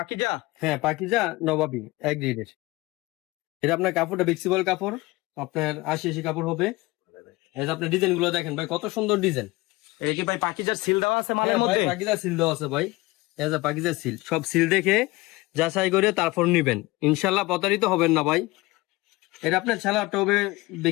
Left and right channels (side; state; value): right; quieter; 21.2 dB